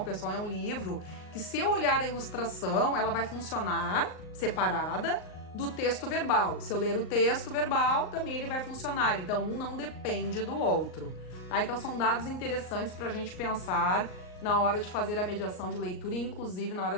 pessoal, é um livro que, se eu olhar a ilustração, ela vai funcionar separada do texto verbal. Se eu ler o texto verbal, também ele vai funcionar. Então, um não depende do outro. Tá? Então, são dados interessantes para a gente pensar na hora de fazer a mediação de leitura e, inclusive, na hora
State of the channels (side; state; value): right; late; 38 ms